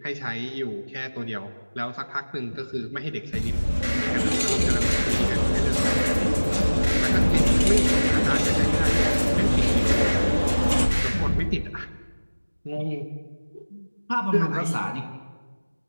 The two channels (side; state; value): both; inverted; correlation -1.00